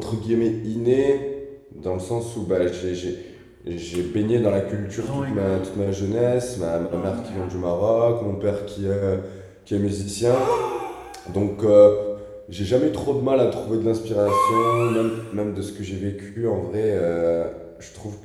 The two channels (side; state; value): both; identical; correlation 1.00